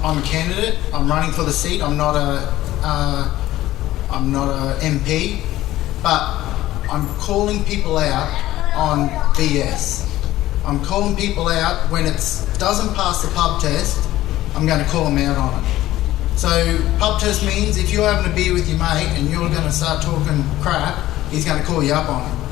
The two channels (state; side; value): quieter; right; 15.2 dB